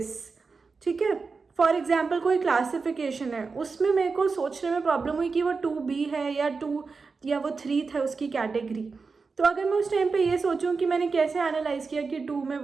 ठीक है. फॉर एग्जाम्पल कोई क्लासिफिकेशन है, उसमें मेरे को सोचने में प्रॉब्लम हुई कि वो 2B है या 2 या वो 3 था उसकी कैटेगरी. तो अगर मैं उस टाइम पे ये सोचूं कि मैंने कैसे एनालाइज किया कि 2 में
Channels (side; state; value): left; quieter; 4.6 dB